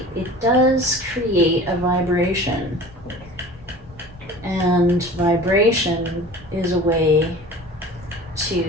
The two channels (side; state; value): both; normal; correlation 0.41